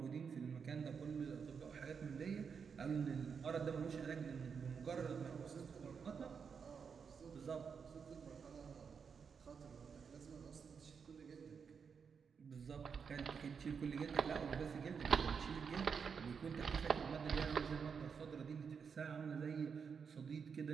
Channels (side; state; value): left; quieter; 6.2 dB